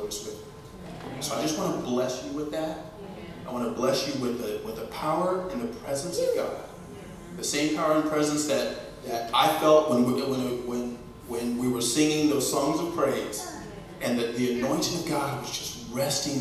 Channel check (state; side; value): identical; both; correlation 1.00